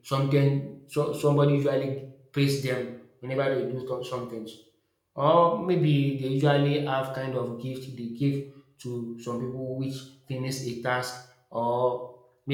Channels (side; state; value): both; identical; correlation 1.00